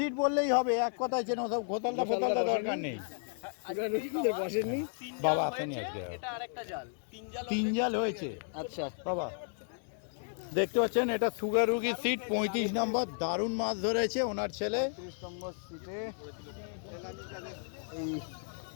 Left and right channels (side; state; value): right; silent; 55 dB below the other